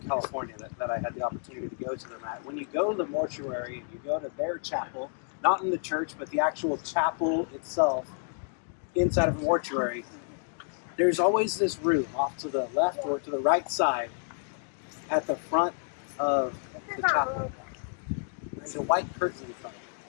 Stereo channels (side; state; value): right; silent; 58 dB below the other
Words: California that I had the opportunity to go to them at. When you go to the mortuary and you go to their chapel, not in the church, but the actual chapel itself, inside of a mortuary, there's always this room off to the left or to the right side at the front of the chapel. There's a white curtain in front of